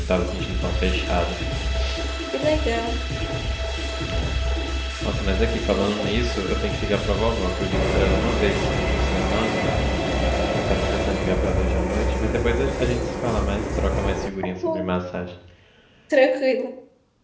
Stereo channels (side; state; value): both; identical; correlation 1.00